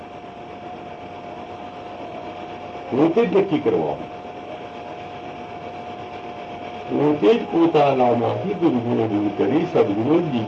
પોતે જ નક્કી કરવાનું, પોતે જ પોતાનામાંથી દુર્ગુણો દૂર કરી સદગુણો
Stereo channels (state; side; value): identical; both; correlation 1.00